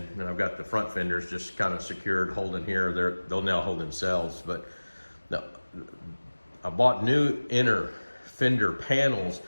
then I've got the front fenders just kind of secured, holding here. They'll now hold themselves. But no, I bought new inner fender panels,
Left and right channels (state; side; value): inverted; both; correlation -1.00